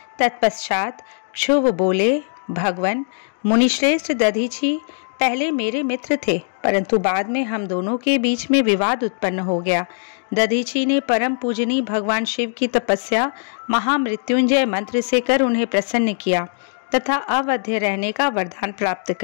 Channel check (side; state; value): right; silent; digital silence